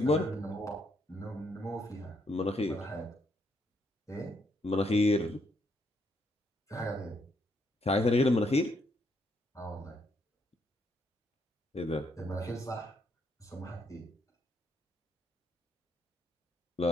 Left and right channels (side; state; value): both; normal; correlation 0.74